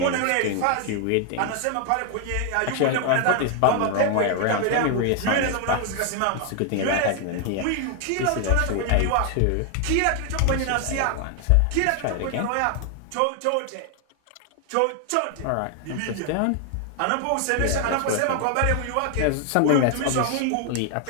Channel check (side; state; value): both; different; correlation 0.00